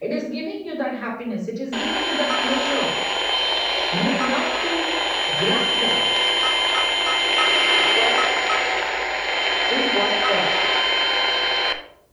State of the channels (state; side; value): identical; both; correlation 1.00